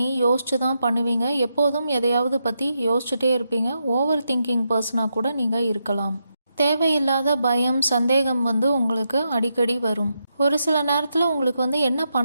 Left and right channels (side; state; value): both; inverted; correlation -0.84